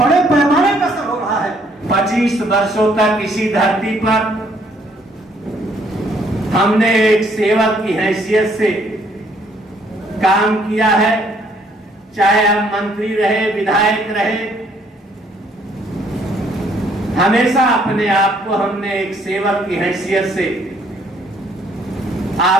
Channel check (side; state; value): both; normal; correlation 0.66